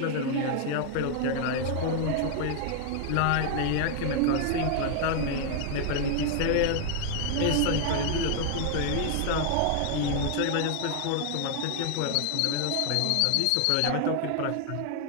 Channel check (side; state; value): both; different; correlation 0.00